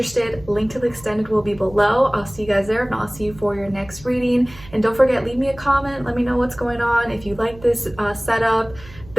link to the extended will be below. I'll see you guys there. If not, I'll see you for your next reading. And don't forget, leave me a comment. Let me know what's going on. If you like this setup,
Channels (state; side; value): noise; right; hum, 19 dB below the sound